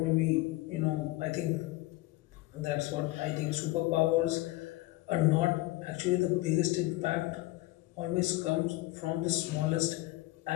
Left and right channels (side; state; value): right; quieter; 19.1 dB